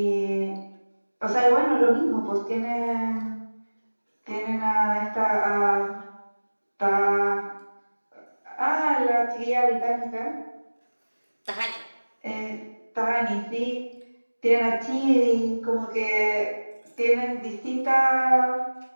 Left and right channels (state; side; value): inverted; both; correlation -1.00